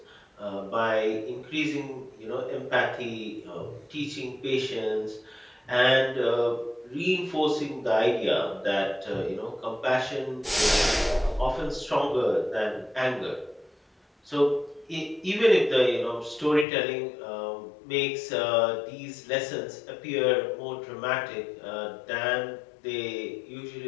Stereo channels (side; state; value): right; drops out; at 16.7 s